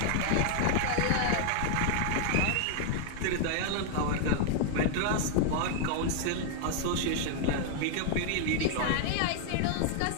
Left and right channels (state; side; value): different; both; correlation 0.00